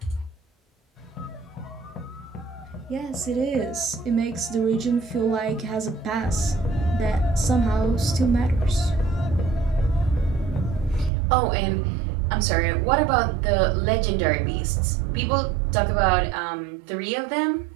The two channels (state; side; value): drops out; left; at 11.1 s